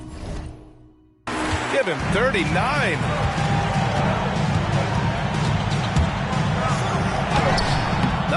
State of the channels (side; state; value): both; identical; correlation 1.00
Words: Give him 39.